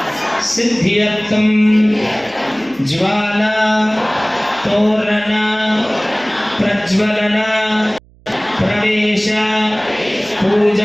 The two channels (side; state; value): right; noise; hum, 28 dB below the sound